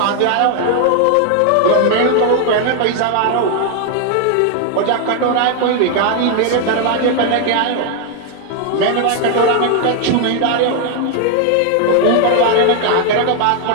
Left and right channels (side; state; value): both; different; correlation 0.00